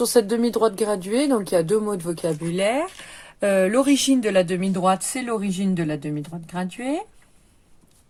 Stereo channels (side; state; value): both; identical; correlation 1.00